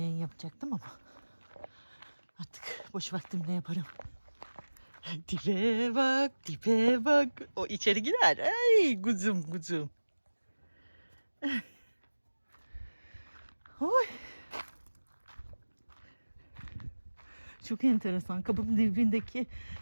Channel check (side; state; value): both; inverted; correlation -1.00